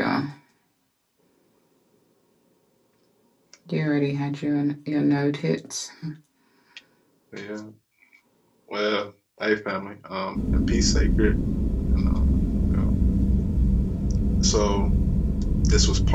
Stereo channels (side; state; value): both; identical; correlation 1.00